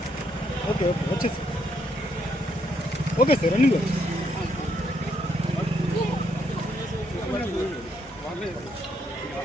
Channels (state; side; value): normal; both; correlation 0.74